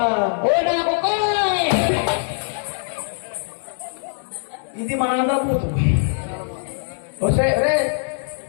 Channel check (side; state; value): right; silent; digital silence